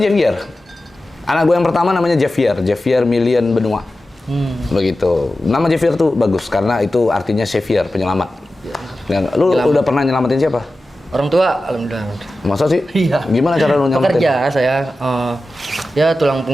Anak gue yang pertama namanya Javier Million Benua. Begitu. Nama Javier tuh bagus karena itu artinya savior, penyelamat. Ya. Lu udah pernah nyelamatin siapa? Orang tua, alhamdulillah. Masa sih? Iya. Gimana cara lu nyelamatin? Pekerja saya, ya tulang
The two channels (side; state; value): both; normal; correlation 0.94